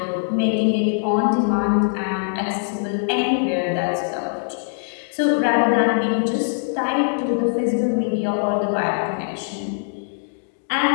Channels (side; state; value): right; silent; digital silence